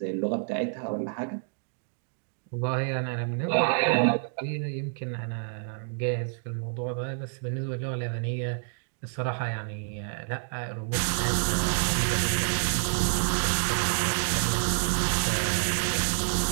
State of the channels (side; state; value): left; silent; digital silence